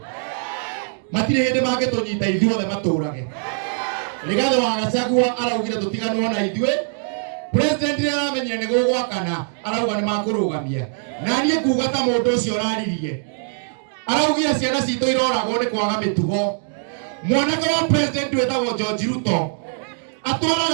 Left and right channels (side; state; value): left; silent; digital silence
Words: matirĩ hĩndĩ mangĩtũnyita ithuothe matũrage. Rigathi wa Gachagua araugire tũtiganwo na ithuĩ. President nĩ aramenyire nĩ gũgwakana arauga nĩ makũrũgamia na niĩ kuga ta mũndũ ũcio ũraririe araugire ciana citũ iroragwo nĩ kwaga mĩtugo. Mwanake wa president wĩtagwo George Ruto